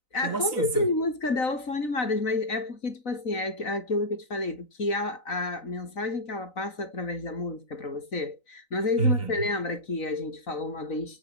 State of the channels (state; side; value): late; right; 3.9 ms